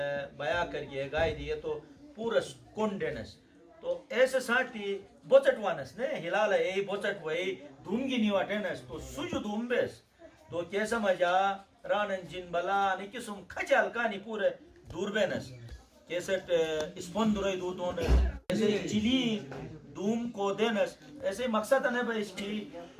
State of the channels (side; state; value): both; identical; correlation 1.00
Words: बया कर गे गाय दिए तो पूरा कोंडेनस तो ऐसे साथी बोचटवानस ने हिलाला ए बोचट वही धूमगी निवाटेनस तो सुजु धूमबेस तो कैसा मजा रानन जिन बला ने किसुम खचाल कानी पूरे दूरबेनस कैसेट स्पंदुरई दूतों ऐसे चिली धूम को देनस ऐसे मकसद है भाई इसकी